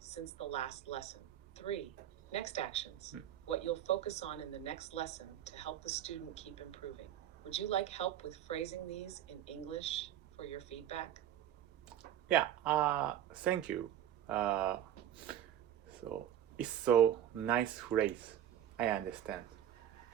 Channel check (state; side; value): quieter; left; 11.1 dB